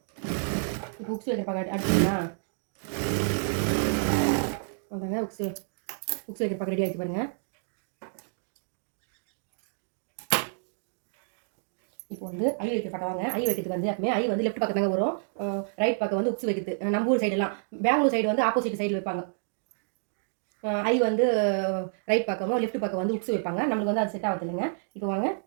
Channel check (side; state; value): left; silent; digital silence